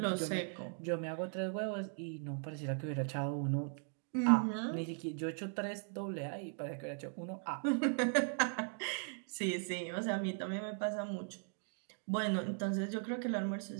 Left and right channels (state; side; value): silent; left; 52 dB below the other